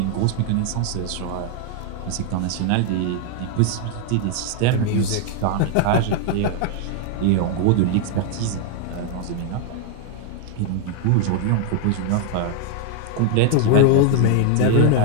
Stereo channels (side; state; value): both; different; correlation 0.00